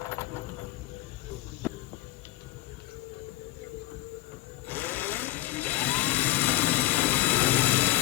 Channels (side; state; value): right; quieter; 16.8 dB